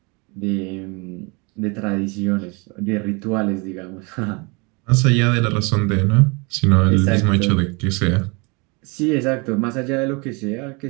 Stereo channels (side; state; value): left; quieter; 29.6 dB